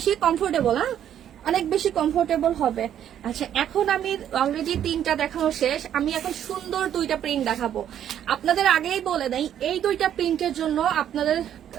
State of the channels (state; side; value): quieter; left; 10.2 dB